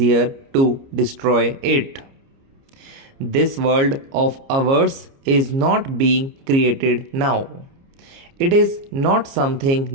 to destroy it. This world of ours is not being created now. It is not something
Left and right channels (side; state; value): left; late; 29 ms